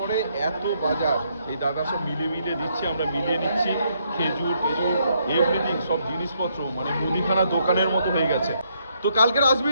এত বাজার এই দাদা সব মিলে দিচ্ছে, আমরা মিলিয়ে নিচ্ছি। খেজুর এভরিথিং, সব জিনিসপত্র মানে মুদিখানা দোকানের মতো হয়ে গেছে। তো কালকের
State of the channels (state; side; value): inverted; both; correlation -0.73